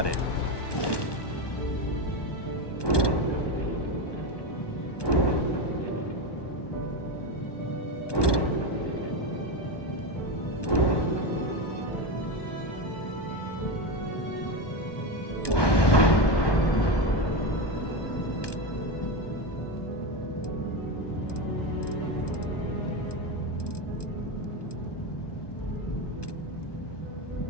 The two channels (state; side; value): late; right; 1.2 ms